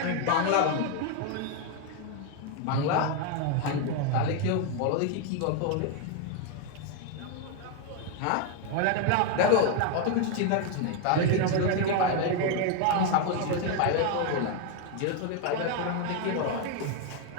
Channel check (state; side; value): different; both; correlation 0.01